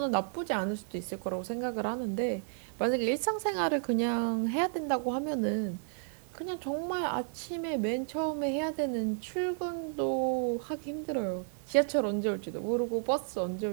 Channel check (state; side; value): silent; left; digital silence